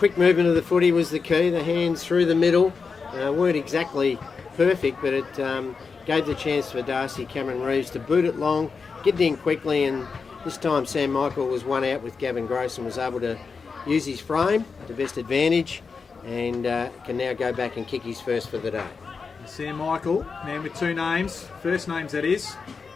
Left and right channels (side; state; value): right; quieter; 5.1 dB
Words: movement of the footy was the key. The hands through the middle weren't exactly perfect, but it gave the chance for Darcy Cameron Reeves to boot it long, get it in quickly, and this time Sam Michael was one out with Gavin Gross and was able to use his frame to best advantage and can now go back and kick his first for the day. Sam Michael, man with two names, first names that is,